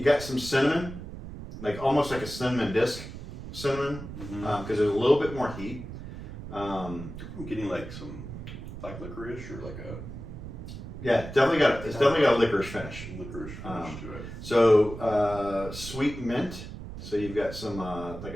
some cinnamon, like almost like a cinnamon disc cinnamon, because there's a little bit more heat. I'm getting like some black licorice or like a. Yeah, definitely got a licorice finish. Licorice finish to it. So sweet mint. So you've got some like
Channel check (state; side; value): noise; right; rumble, 10 dB below the sound